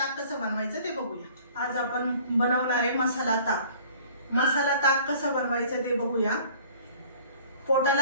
कसं बनवायचं ते बघूया। आज आपण बनवणार आहे मसाला ताक। मसाला ताक कसं बनवायचं ते बघूया।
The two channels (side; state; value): both; inverted; correlation -0.51